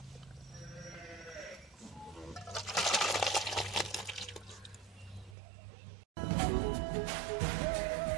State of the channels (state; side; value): drops out; left; at 5.4 s